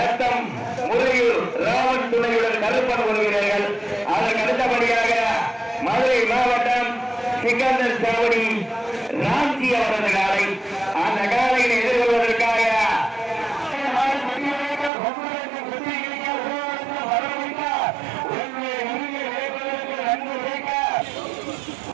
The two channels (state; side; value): drops out; left; at 14.9 s